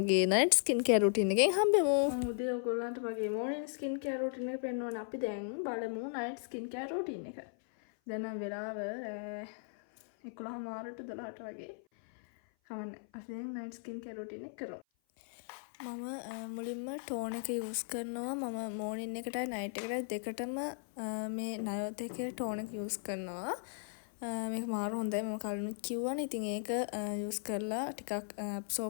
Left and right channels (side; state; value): right; silent; 53 dB below the other